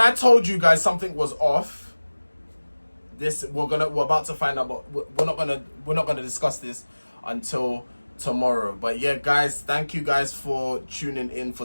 I told you guys something was off, we're about to find out, but we're not gonna discuss this until tomorrow. But yeah, guys, thank you guys for tuning in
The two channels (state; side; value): inverted; both; correlation -1.00